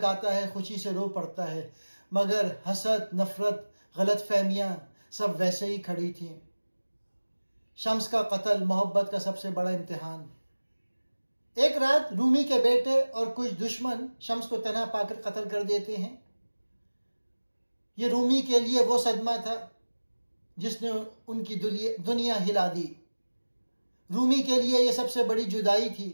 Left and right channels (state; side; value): inverted; both; correlation -1.00